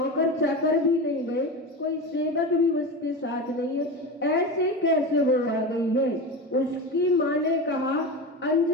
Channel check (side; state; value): both; normal; correlation 0.24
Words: चाकर भी नहीं गए, कोई सेवक भी उसके साथ नहीं है, ऐसे कैसे वो आ गई है? उसकी माँ ने कहा,